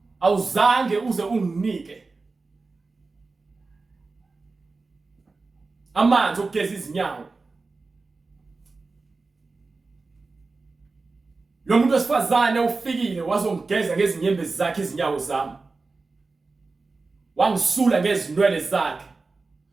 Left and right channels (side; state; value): left; quieter; 3.8 dB